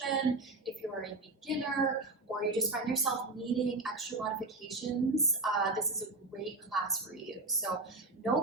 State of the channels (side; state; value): left; quieter; 3.2 dB